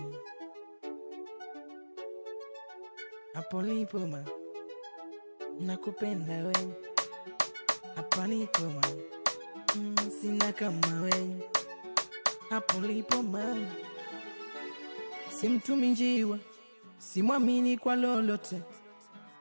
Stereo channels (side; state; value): both; inverted; correlation -1.00